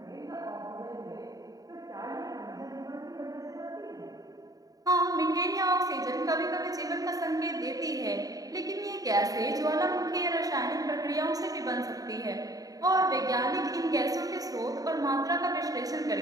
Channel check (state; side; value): late; left; 0.18 ms